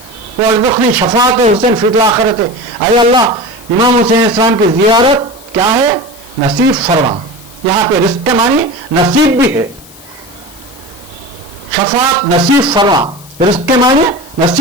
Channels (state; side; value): noise; left; hiss, 22 dB below the sound